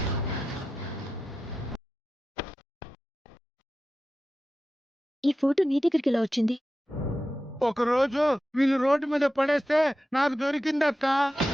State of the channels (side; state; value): both; normal; correlation 0.92